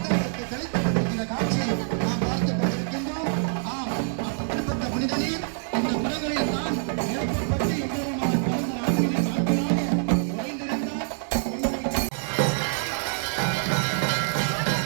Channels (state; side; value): silent; left; digital silence